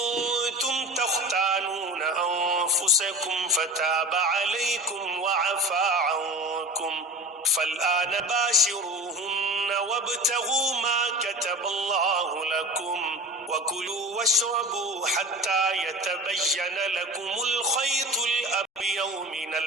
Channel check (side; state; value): both; normal; correlation 0.33